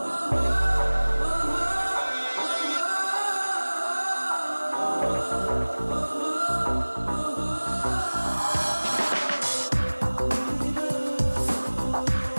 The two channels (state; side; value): inverted; both; correlation -1.00